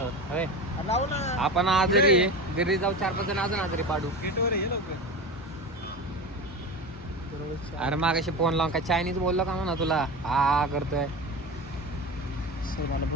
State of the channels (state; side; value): normal; both; correlation 0.27